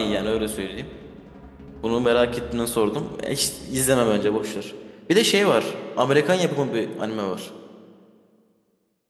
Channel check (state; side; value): identical; both; correlation 1.00